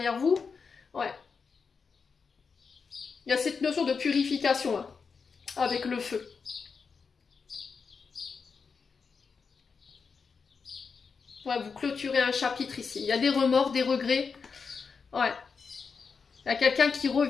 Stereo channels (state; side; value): quieter; right; 5.4 dB